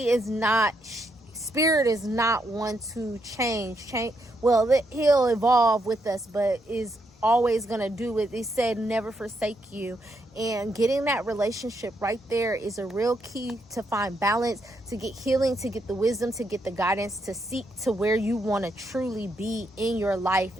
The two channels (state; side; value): normal; both; correlation 0.78